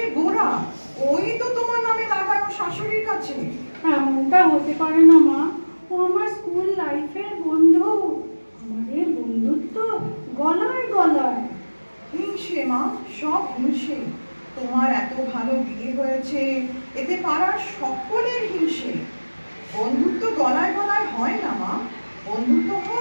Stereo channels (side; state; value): both; inverted; correlation -1.00